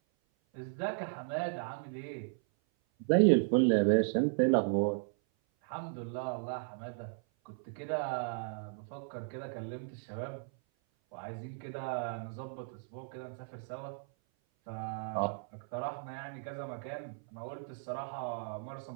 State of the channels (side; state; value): left; silent; 54 dB below the other